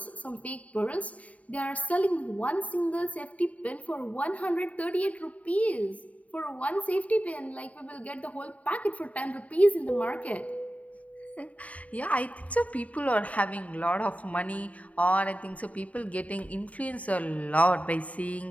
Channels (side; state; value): right; late; 0.069 ms